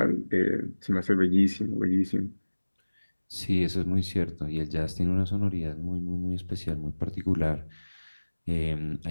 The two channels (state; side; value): inverted; both; correlation -1.00